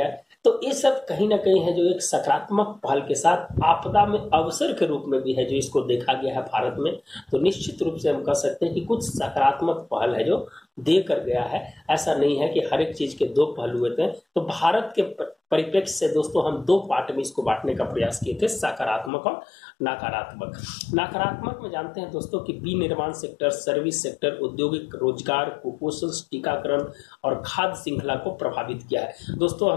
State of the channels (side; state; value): right; drops out; at 19.1 s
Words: तो ये सब कहीं ना कहीं है जो एक सकारात्मक पहल के साथ आपदा में अवसर के रूप में भी है जो इसको देखा गया है भारत में। तो निश्चित रूप से हम कह सकते हैं कि कुछ सकारात्मक पहल है जो दे कर गया है। ऐसा नहीं है कि हर एक चीज के 2 पहलू होते हैं। तो भारत के परिप्रेक्ष्य से दोस्तों हम 2 पार्ट में इसको बांटने का प्रयास किए थे, सकारात्मक और नकारात्मक। नकारात्मक में जानते हैं दोस्तों कि विनिर्माण सेक्टर, सर्विस सेक्टर, औद्योगिक रोजगार, कुपोषण, टीकाकरण और खाद्य श्रृंखला को प्रभावित किया है। दोस्तों